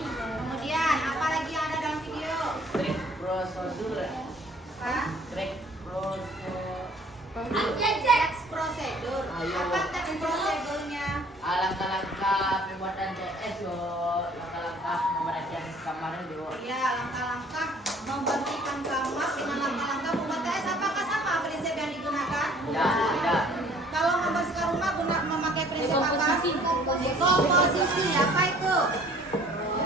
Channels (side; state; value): both; normal; correlation 0.55